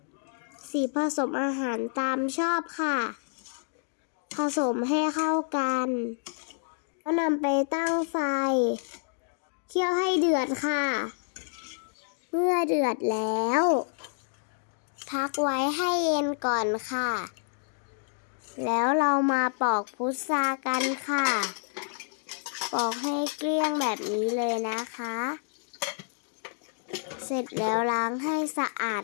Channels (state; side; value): silent; right; digital silence